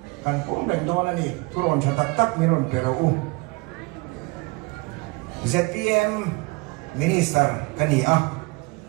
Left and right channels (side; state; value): left; quieter; 26.6 dB